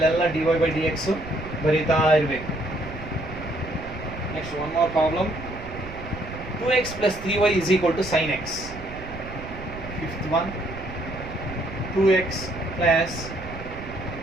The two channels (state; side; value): noise; right; rumble, 12 dB below the sound